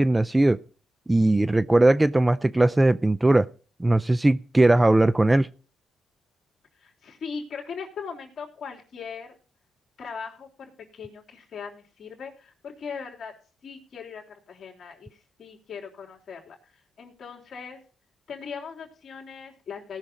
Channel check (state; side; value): normal; both; correlation 0.98